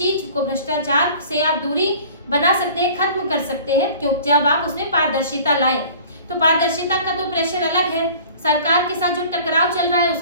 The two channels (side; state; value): both; inverted; correlation -0.47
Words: को, भ्रष्टाचार से आप दूरी बना सकते हैं, खत्म कर सकते हैं, क्योंकि जब आप उसमें पारदर्शिता लाएं। तो पारदर्शिता का तो प्रेशर अलग है, सरकार के साथ जो टकराव चल रहा है